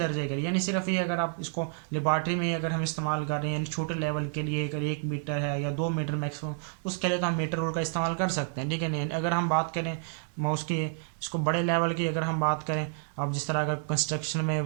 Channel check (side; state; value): left; silent; 58 dB below the other